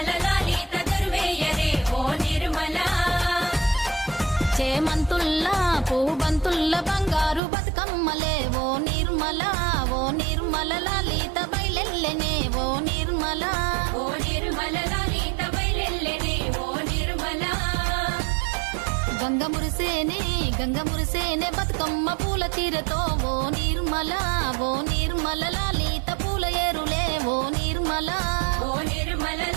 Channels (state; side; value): drops out; left; at 7.4 s